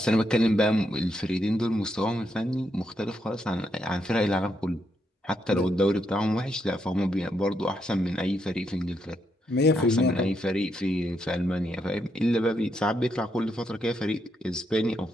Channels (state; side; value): normal; both; correlation 0.79